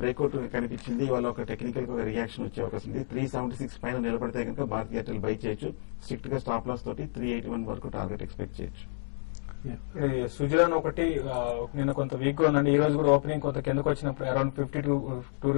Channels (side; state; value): right; silent; digital silence